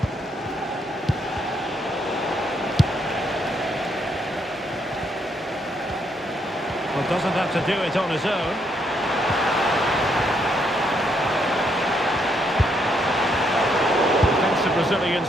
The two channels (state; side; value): normal; both; correlation 0.74